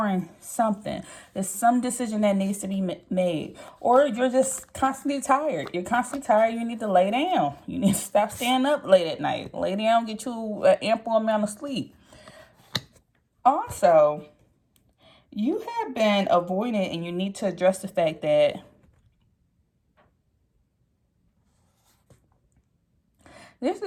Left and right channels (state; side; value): identical; both; correlation 1.00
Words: something. There's some decision that needs to be made, or you're just constantly tired. You're constantly tired. You need to lay down. You need to stop staying up late at night. Lay down, get you an ample amount of sleep. Also, you have been avoiding, and you need to address the fact that there's